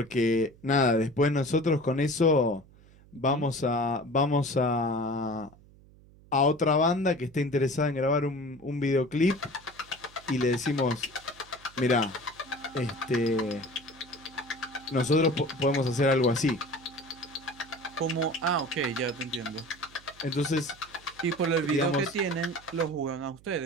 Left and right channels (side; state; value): right; noise; hum, 25 dB below the sound